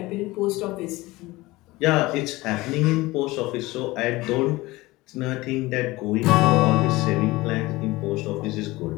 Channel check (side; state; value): right; quieter; 20.2 dB